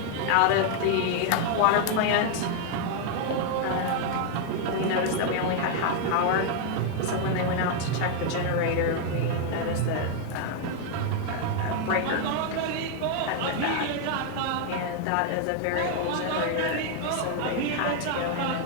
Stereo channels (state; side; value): different; both; correlation 0.00